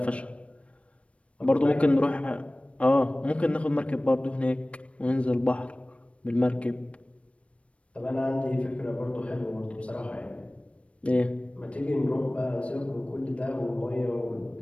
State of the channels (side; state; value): right; late; 0.062 ms